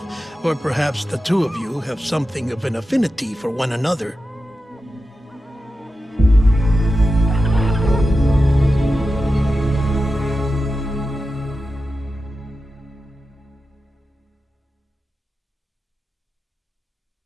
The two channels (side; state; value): both; normal; correlation 0.92